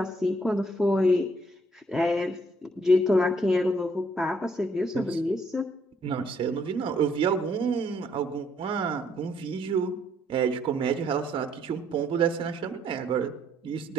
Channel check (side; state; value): both; normal; correlation 0.68